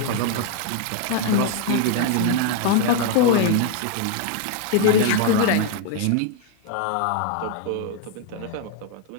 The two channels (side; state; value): both; different; correlation 0.00